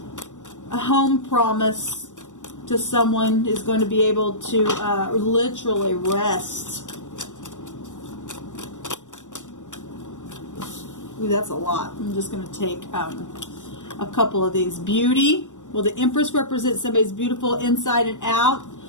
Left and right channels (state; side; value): late; right; 0.85 ms